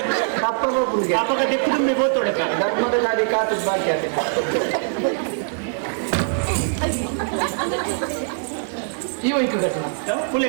ಅಪ್ಪಗ ದಿಕ್ಕು ತುಂಬಿ ಬೋತೋಡೆ ಧರ್ಮದ ಗಾಡಿ ಕಾತು ಬಾಕಿ ಅದು ಈ ವೈಕು ಘಟನಾ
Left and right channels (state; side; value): silent; left; 57 dB below the other